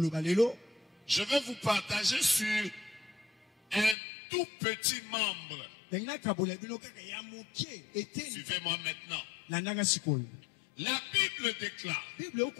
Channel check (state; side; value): drops out; right; at 4.0 s